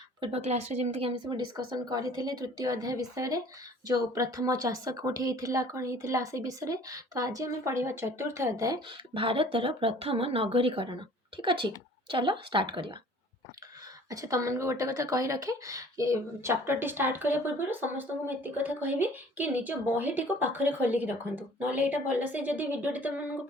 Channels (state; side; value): normal; both; correlation 0.51